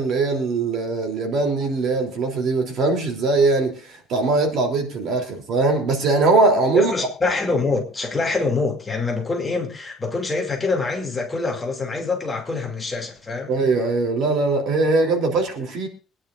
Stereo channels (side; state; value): both; normal; correlation 0.47